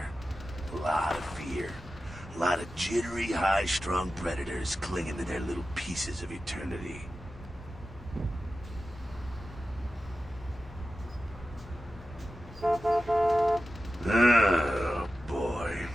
A lot of fear. A lot of jittery, high-strung predators clinging to their little pieces of eternity. Oh, boy.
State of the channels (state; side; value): normal; both; correlation 0.93